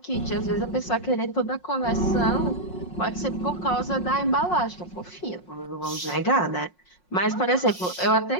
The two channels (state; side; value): late; right; 5.5 ms